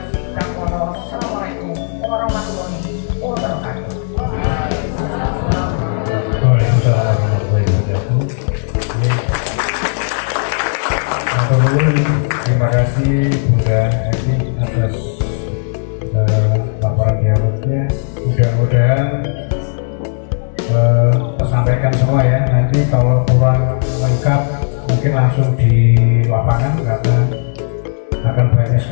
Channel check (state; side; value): silent; right; digital silence